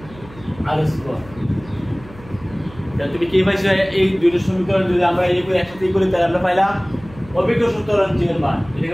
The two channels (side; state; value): right; noise; hum, 20 dB below the sound